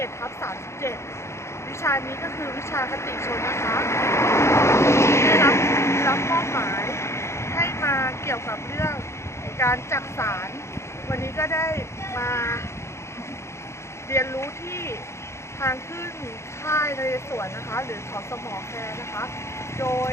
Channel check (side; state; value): right; late; 0.13 ms